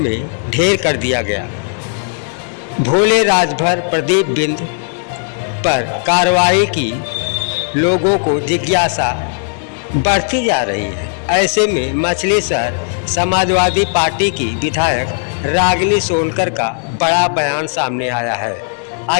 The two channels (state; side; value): silent; right; 64 dB below the other